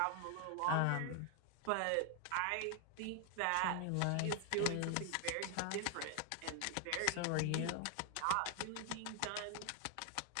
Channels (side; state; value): both; different; correlation 0.00